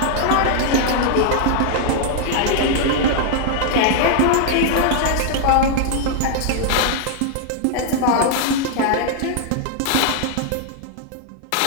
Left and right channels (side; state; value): both; different; correlation 0.00